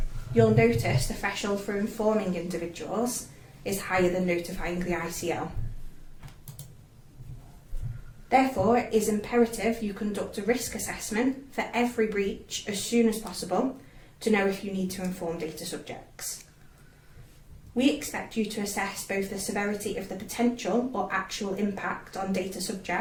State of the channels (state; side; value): identical; both; correlation 1.00